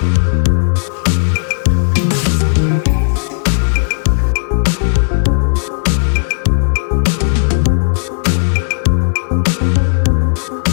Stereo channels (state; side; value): silent; right; digital silence